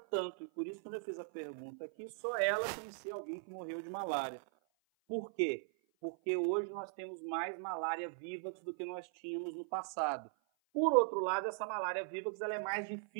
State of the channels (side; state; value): left; silent; 52 dB below the other